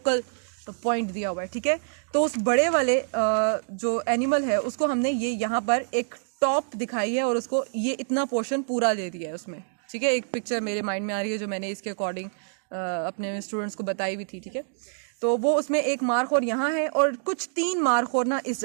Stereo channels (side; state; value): left; silent; digital silence